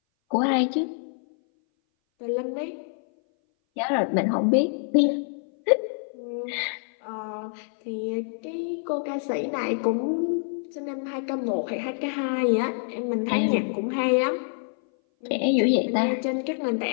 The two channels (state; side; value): silent; right; 58 dB below the other